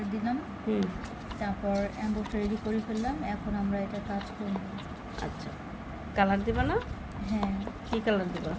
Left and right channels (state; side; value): identical; both; correlation 1.00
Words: দিলাম, তারপর অ্যাম্বসটা রেডি করে ফেললাম। এখন আমরা এটা কাজ করব। আচ্ছা, কালার দিবা না? হ্যাঁ। কি কালার দিবা?